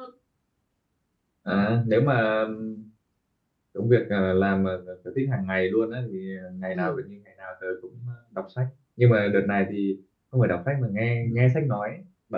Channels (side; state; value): both; identical; correlation 1.00